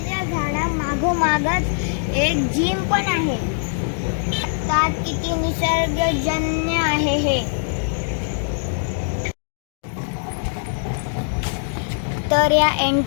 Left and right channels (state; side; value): silent; right; digital silence